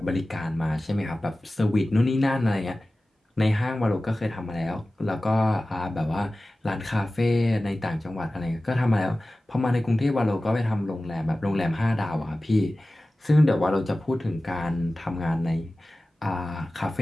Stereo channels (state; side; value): normal; both; correlation 0.96